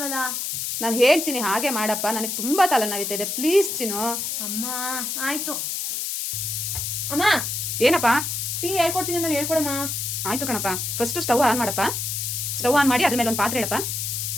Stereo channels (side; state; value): left; noise; hiss, 2 dB below the sound